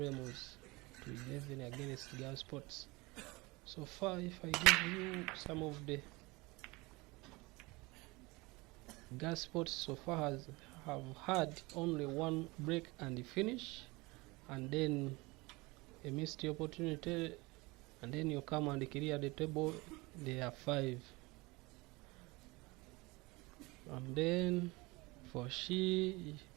to 11 against GARETH. So far, if I give you some of the GARETH so far have had only one break and finish, and then a missed opportunity, and then you come and clear the table. There are 5. And then for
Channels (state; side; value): quieter; left; 23.9 dB